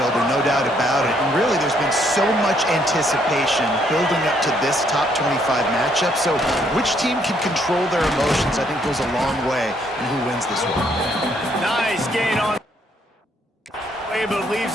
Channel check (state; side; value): normal; both; correlation 0.69